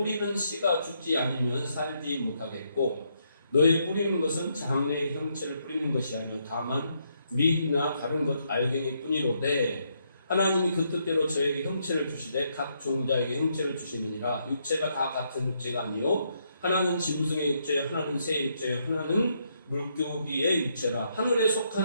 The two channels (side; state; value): both; inverted; correlation -0.76